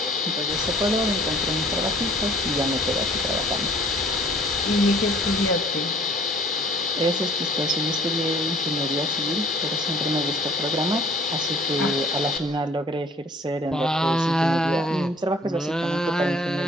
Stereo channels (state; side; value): normal; both; correlation 0.53